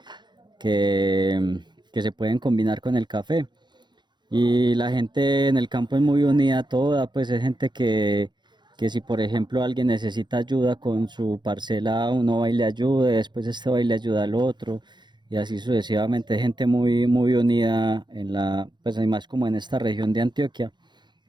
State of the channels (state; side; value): late; left; 0.22 ms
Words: se pueden combinar con el café. Y la gente en el campo es muy unida toda, pues es gente que si por ejemplo alguien necesita ayuda con su parcela, uno va y le ayuda, después este va y le ayuda al otro, y así sucesivamente, es gente muy unida en pues hay más como en esta región de Antioquia,